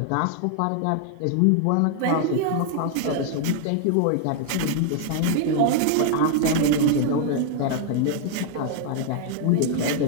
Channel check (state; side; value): different; both; correlation 0.00